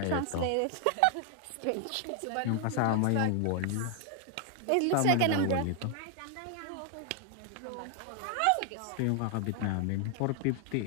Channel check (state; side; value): different; both; correlation 0.00